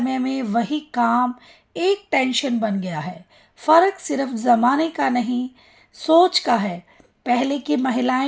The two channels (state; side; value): identical; both; correlation 1.00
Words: में वही काम एक टेंशन बन गया है। फ़र्क सिर्फ ज़माने का नहीं, सोच का है। पहले की